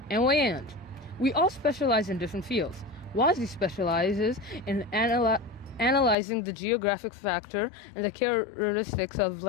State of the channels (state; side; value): drops out; right; at 6.2 s